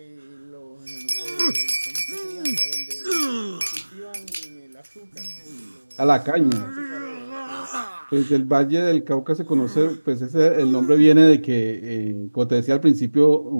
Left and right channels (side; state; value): both; inverted; correlation -1.00